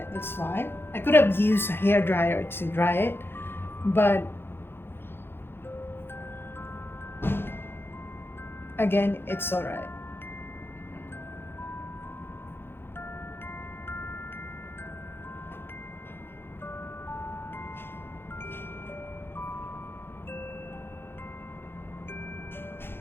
that's why. I could have used a hair dryer to dry it, but again, it's all right.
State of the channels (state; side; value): late; right; 0.11 ms